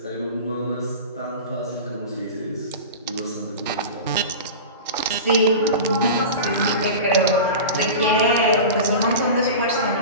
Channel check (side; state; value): both; inverted; correlation -0.30